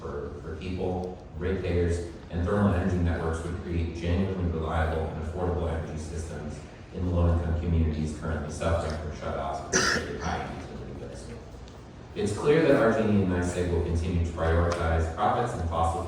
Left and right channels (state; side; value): identical; both; correlation 1.00